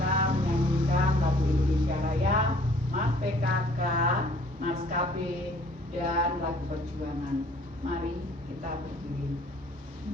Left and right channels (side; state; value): both; normal; correlation 0.57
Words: menyanyikan lagu Indonesia Raya, Mas PKK, Mas KB, dan lagu perjuangan. Mari kita berdiri.